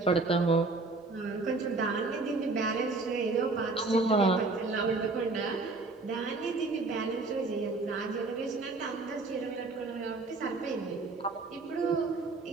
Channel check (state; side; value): quieter; left; 3.6 dB